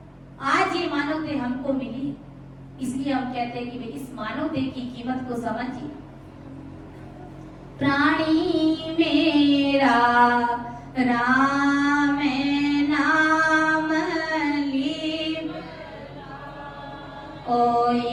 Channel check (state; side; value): identical; both; correlation 1.00